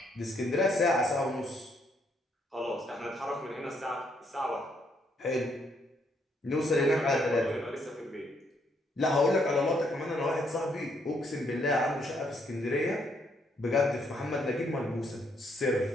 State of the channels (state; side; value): normal; both; correlation 0.72